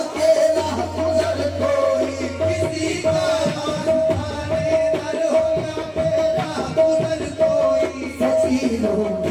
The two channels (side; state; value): both; identical; correlation 1.00